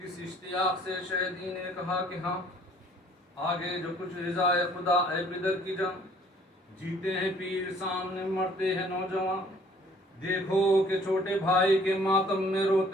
اشتیاق سے شہدی نے کہا کہ ہاں، آگے جو کچھ رضائے خدا اے پدر کی جان، جیتے ہیں پیر سامنے مرتے ہیں نوجوان، دیکھو کہ چھوٹے بھائی کے ماتم میں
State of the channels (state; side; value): normal; both; correlation 0.58